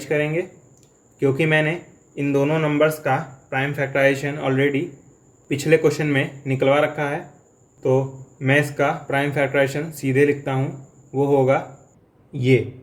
करेंगे, क्योंकि मैंने इन दोनों नंबर्स का प्राइम फैक्टराइजेशन ऑलरेडी पिछले क्वेश्चन में निकलवा रखा है, तो मैं इसका प्राइम फैक्टराइजेशन सीधे लिखता हूँ, वो होगा ये।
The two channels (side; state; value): both; identical; correlation 1.00